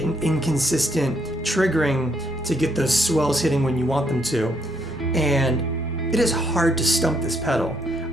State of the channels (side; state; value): both; normal; correlation 0.72